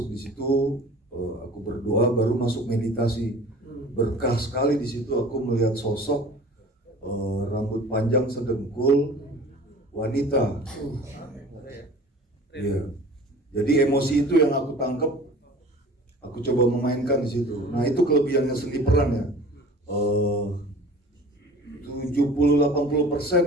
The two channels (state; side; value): normal; both; correlation 0.44